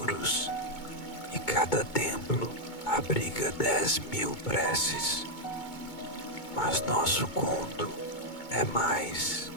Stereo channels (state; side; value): late; right; 2.2 ms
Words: e cada templo abriga 10.000 preces. Mas nosso conto é mais